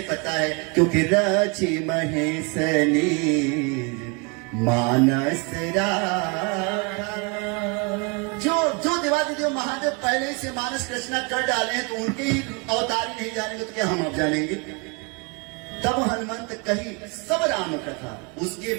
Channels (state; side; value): quieter; left; 31.2 dB